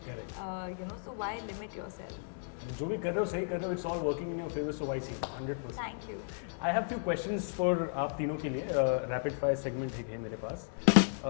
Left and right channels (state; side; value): silent; right; digital silence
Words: Correct. So why limit yourself? And जो भी कर रहे हो सही कर रहे हो, it's all working in your favor, so why see? 100%. Thank you. I have few questions for आप तीनों के लिए. Rapid fire segment है मेरे पास.